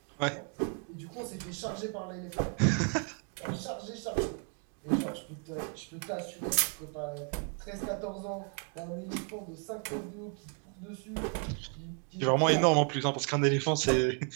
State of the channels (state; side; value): quieter; left; 40.0 dB